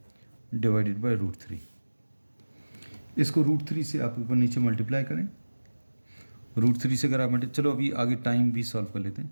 divided by √3। इसको √3 से आप ऊपर नीचे मल्टीप्लाई करें, √3 से अगर आप चलो अभी आगे टाइम भी सॉल्व कर लेते हैं।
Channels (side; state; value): both; inverted; correlation -1.00